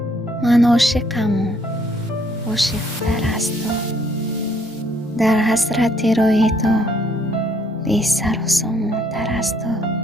من عاشقم و عاشق‌تر از تو، در حسرت روی تو بی سر و سامان‌تر از تو.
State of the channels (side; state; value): both; normal; correlation 0.66